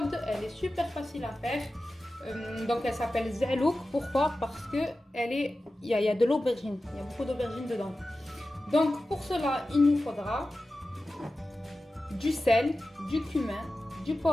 Elle est super facile à faire. Donc elle s'appelle Zelouk. Pourquoi? Parce que il y a de l'aubergine, il y a beaucoup d'aubergine dedans. Donc pour cela il nous faudra du sel, du cumin, du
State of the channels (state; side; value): normal; both; correlation 0.94